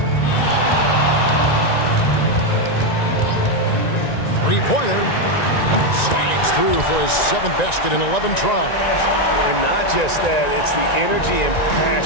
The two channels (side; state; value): right; late; 1.9 ms